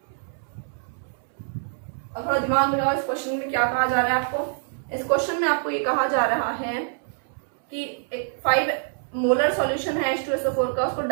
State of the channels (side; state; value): left; silent; 61 dB below the other